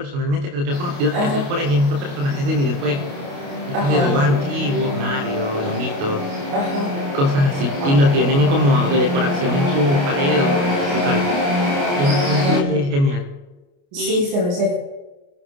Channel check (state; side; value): late; left; 29 ms